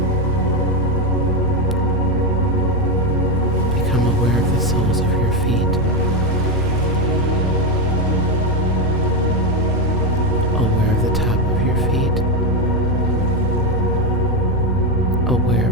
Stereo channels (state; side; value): normal; both; correlation 0.11